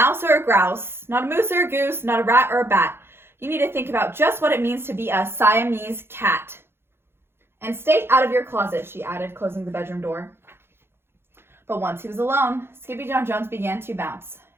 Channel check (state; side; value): late; left; 0.11 ms